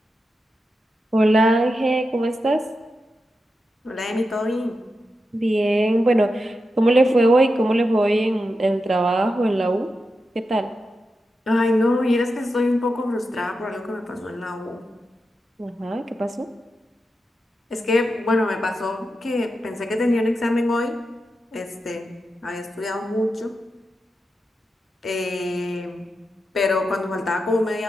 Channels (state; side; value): normal; both; correlation 0.89